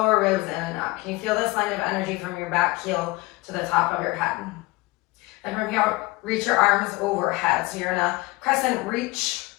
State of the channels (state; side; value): quieter; right; 22.0 dB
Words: ribs in and up. Can you feel this line of energy from your back heel to the top of your head? And from here, reach your arms overhead. So you're in a crescent reach.